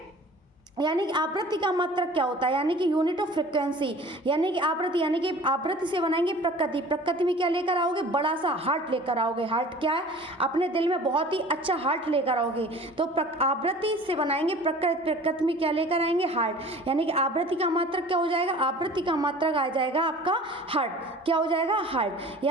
यानी कि आवृत्ति का मात्रक क्या होता है? यानी कि यूनिट ऑफ फ्रिक्वेंसी, यानी कि आवृत्ति, यानी कि आवृत्ति से बनाएंगे प्रकृति। प्रकृति में क्या लेकर आओगे? बड़ा सा हार्ट लेकर आओगे। हार्ट क्या है? अपने दिल में बहुत ही अच्छा हार्ट लेकर आओगे। तो आवृत्ति से बनाएंगे प्रकृति। प्रकृति में क्या लेकर आएंगे? हार्ट। यानी कि आवृत्ति का मात्रक क्या हो जाएगा? आवृत्ति का मात्रक आ जाएगा आपका हार्ट। क्या हो जाएगा? हार्ट।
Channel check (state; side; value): normal; both; correlation 0.44